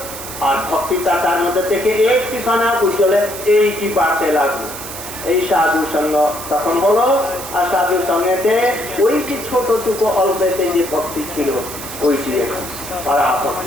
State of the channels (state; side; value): noise; right; hiss, 10 dB below the sound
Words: আর ভক্তিটা তার মধ্যে থেকে একটি খানা ওই জলে এইটি বাড়তে লাগলো এই সাধু সঙ্গ তখন হলো। আর সাধু সঙ্গেতে ওই যে ছোটটুকু অল্পেতে যে ভক্তি ছিল ওইটি পারা